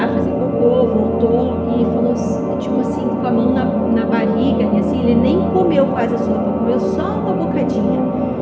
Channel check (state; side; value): identical; both; correlation 1.00